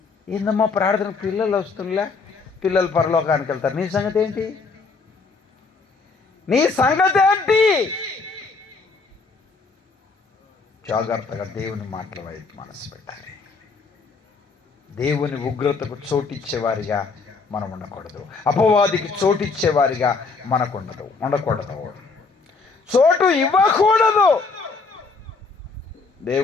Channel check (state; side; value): quieter; right; 4.4 dB